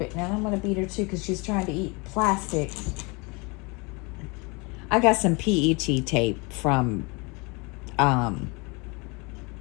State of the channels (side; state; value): right; quieter; 28.8 dB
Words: her too, because she's trying to eat plastic. I got some PET tape from